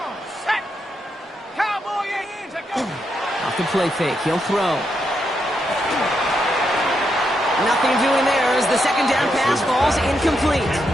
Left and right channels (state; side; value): normal; both; correlation 0.81